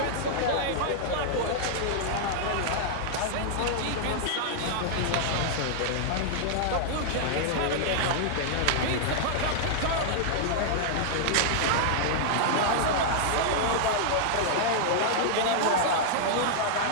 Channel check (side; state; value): both; different; correlation -0.01